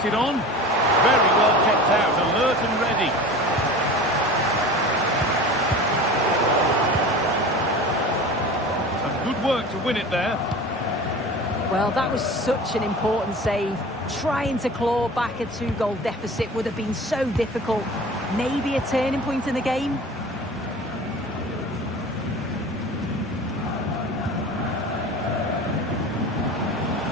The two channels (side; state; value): both; normal; correlation 0.37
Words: it on. Very well kept out, alert and ready. Good work to win it there. Well, that was such an important save. Trying to claw back a 2-goal deficit would have been so difficult. Maybe a turning point in the game.